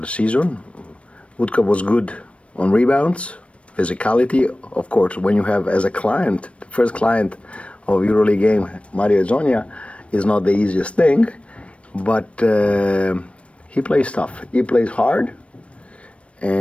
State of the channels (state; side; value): late; right; 0.062 ms